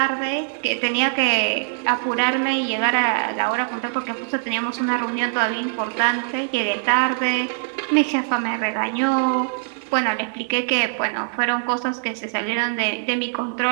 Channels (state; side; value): silent; left; digital silence